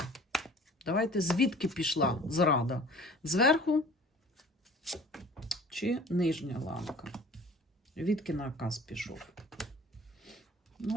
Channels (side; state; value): both; normal; correlation 0.47